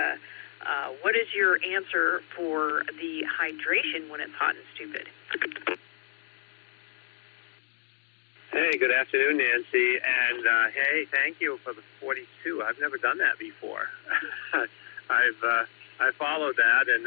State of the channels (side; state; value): right; quieter; 33.2 dB